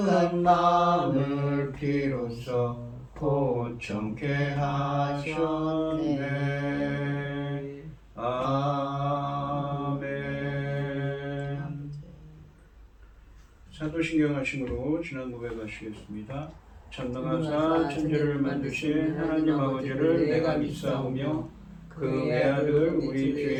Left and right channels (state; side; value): identical; both; correlation 1.00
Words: 마음을 비로소 고청케 하셨네. 아멘. 사도신경 하심으로 지난 고백하시겠습니다. 전능하사 천지를 만드신 하나님 아버지를 내가 믿사오며 그 외아들 우리 주